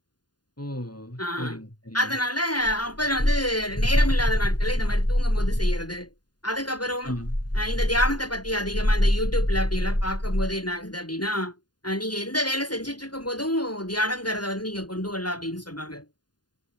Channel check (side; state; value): right; late; 0.70 ms